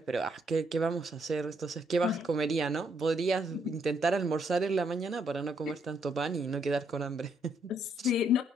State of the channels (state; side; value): normal; both; correlation 0.73